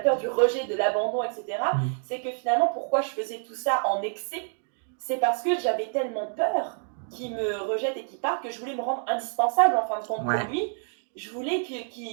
du rejet, de l'abandon, etc., Mm. c'est que finalement, pourquoi je faisais tout ça en excès, c'est parce que j'avais tellement peur qu'il me rejette et qu'il parte que je voulais me rendre indispensable en fin de compte pour Ouais. lui. Je voulais qu'il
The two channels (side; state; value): left; silent; 60 dB below the other